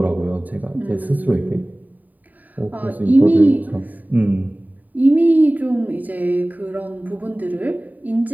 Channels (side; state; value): left; late; 0.082 ms